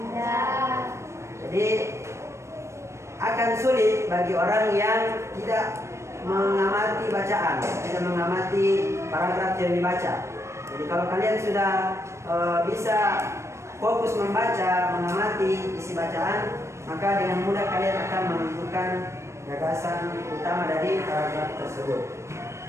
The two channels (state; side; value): late; left; 0.13 ms